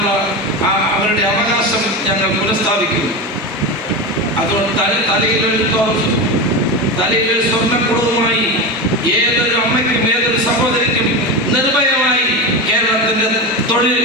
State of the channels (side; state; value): both; normal; correlation 0.20